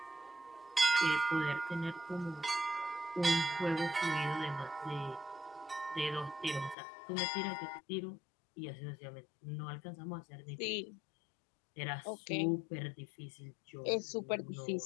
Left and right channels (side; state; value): right; drops out; at 6.8 s